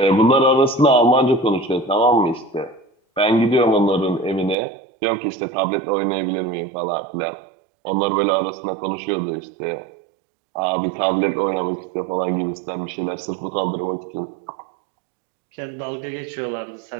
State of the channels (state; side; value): drops out; left; at 4.5 s